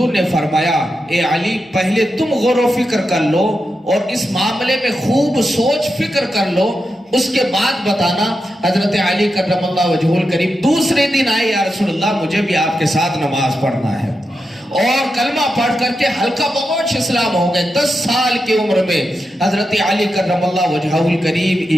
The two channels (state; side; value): normal; both; correlation 0.88